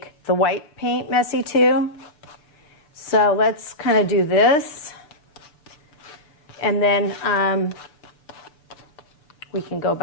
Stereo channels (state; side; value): late; right; 6.8 ms